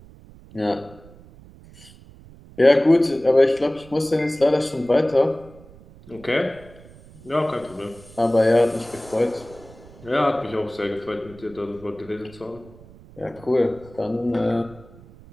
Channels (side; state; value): right; noise; rumble, 22 dB below the sound